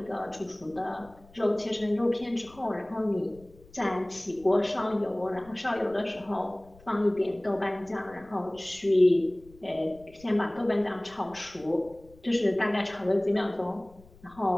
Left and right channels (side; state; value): left; noise; rumble, 25 dB below the sound